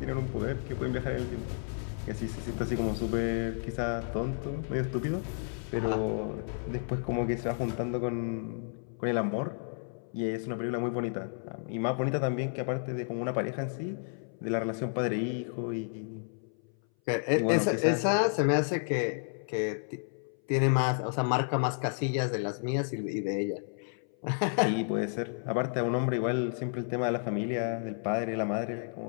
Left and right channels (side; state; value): right; silent; 57 dB below the other